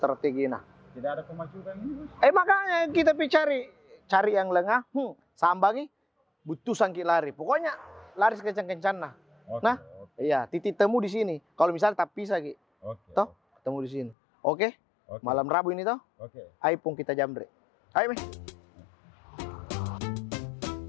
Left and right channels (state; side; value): drops out; right; at 14.2 s